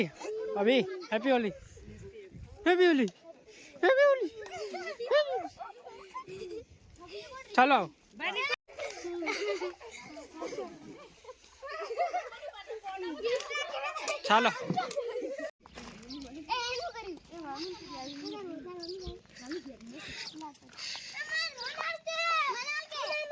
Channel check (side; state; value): both; identical; correlation 1.00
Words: અભી હેપી હોલી હેપી હોલી હેપી હોલી. ચાલો ચાલો